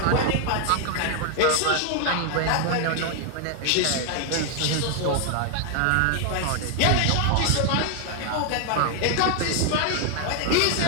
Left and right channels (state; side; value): different; both; correlation 0.00